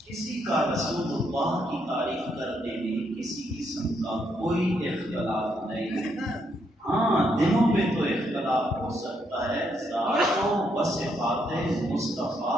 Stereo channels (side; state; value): both; normal; correlation 0.76